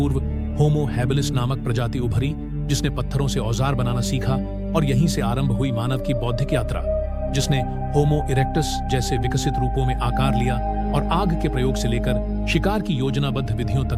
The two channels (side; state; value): both; identical; correlation 1.00